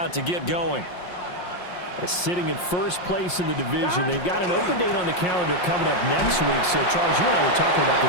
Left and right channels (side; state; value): right; late; 5.6 ms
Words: to get going. They're sitting in first place in the division. They've got an open date on the calendar coming up next week. So, Charles, you and I were talking about